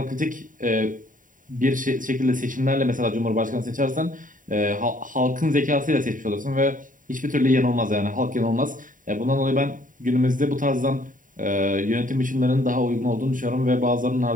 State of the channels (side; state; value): left; late; 0.39 ms